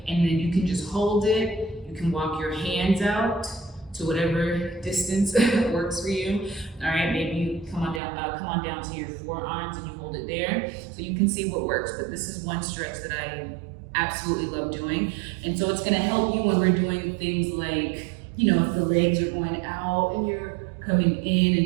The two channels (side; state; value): left; drops out; at 8.0 s